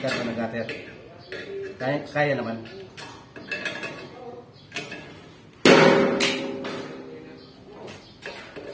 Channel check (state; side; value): identical; both; correlation 1.00